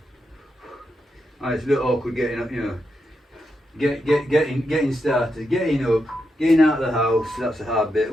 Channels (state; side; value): normal; both; correlation 0.85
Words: It's a bit awkward getting up, getting started, getting up, getting out of the house. That's a hard bit.